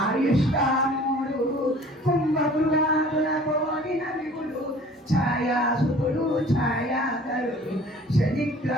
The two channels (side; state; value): both; normal; correlation 0.49